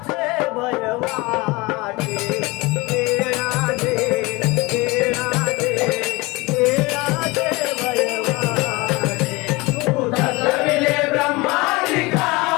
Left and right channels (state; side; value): quieter; right; 23.8 dB